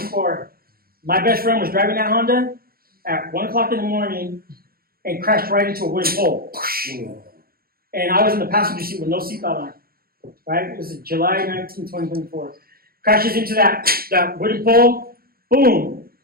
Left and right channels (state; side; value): late; left; 0.43 ms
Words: my best friend was driving that Honda at 1 o'clock in the morning and crashed right into a wooden pole. And I was in the passenger seat with no seatbelt on, right? It was July 19, 2024. Crashes into that wooden pole, boom.